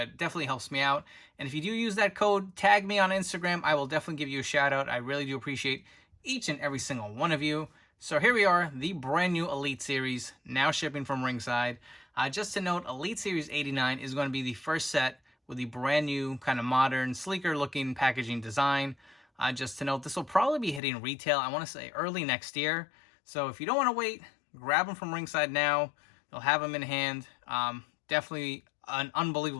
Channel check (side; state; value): right; drops out; at 20.8 s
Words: definitely helps me out. And if you do use that code, tag me on Instagram. I will definitely give you a shout out. I really do appreciate each and every single one of you. So here we are, the brand new Elite Series, now shipping from Ringside. Just to note, Elite Series 89 is going to be the first set with the brand new, kind of modern, sleeker looking packaging design. Just to note, this will probably be hitting retail, I want to say early next year. So if you don't want to wait, grab them from Ringside now. They'll have them in hand. Definitely an